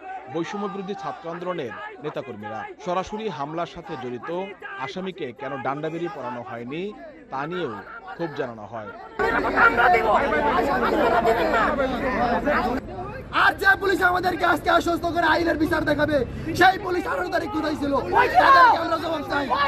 বৈষম্যবিরোধী ছাত্র আন্দোলনের নেতাকর্মীরা। সরাসরি হামলার সাথে জড়িত আসামিকে কেন ডান্ডাবেরি পরানো হয়নি তা নিয়েও ক্ষোভ জানানো হয়। আর যে পুলিশ আমাদেরকে আজকে আশ্বস্ত করে আইনের বিচার দেখাবে, সেই পুলিশ 18 তারিখ কোথায় ছিল? তাদেরকে আমরা জবাব চাই।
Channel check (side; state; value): both; identical; correlation 1.00